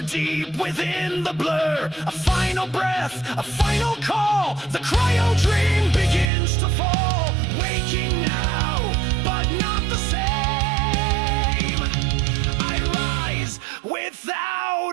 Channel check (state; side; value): drops out; left; at 6.3 s